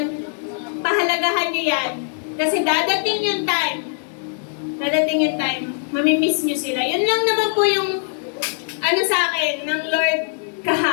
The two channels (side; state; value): right; silent; digital silence